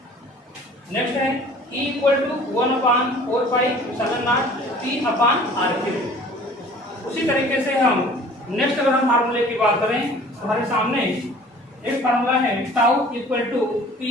Next है E equal to 1/4 pi epsilon naught P upon RQ। उसी तरीके से हम next अगर हम फार्मूले की बात करें तो हमारे सामने एक फार्मूला है tau equal to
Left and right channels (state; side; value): normal; both; correlation 0.49